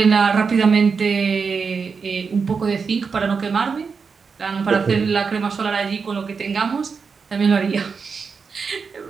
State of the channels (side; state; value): left; quieter; 5.4 dB